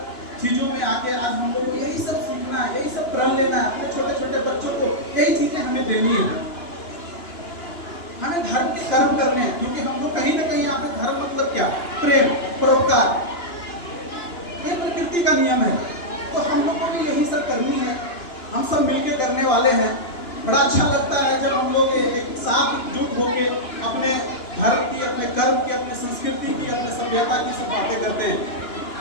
चीजों में आके आज हम लोग को यही सब सीखना है, यही सब प्रण लेना है। अपने छोटे छोटे बच्चों को यही चीजें हमें देनी है। हमें धर्म के कर्म करने हैं, क्योंकि हम लोग कहीं ना कहीं यहाँ पे धर्म मतलब क्या? प्रेम, परोपकार, ये प्रकृति का नियम है। तो हम लोग को भी यही सब करनी है, हम सब मिलके करने वाले हैं। बड़ा अच्छा लगता है जब हम लोग एक साथ एकजुट होके अपने धर्म की, अपने कर्म की, अपने संस्कृति की, अपने सभ्यता की सब बातें करते हैं।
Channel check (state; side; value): late; right; 2.9 ms